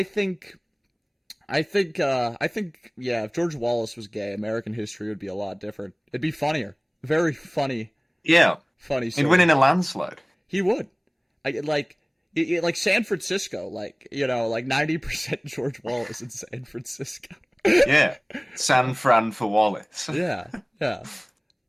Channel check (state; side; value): identical; both; correlation 1.00